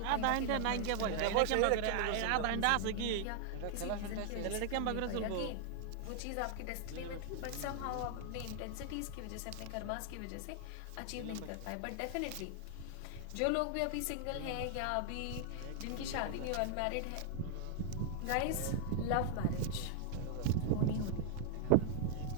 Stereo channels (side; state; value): both; different; correlation 0.00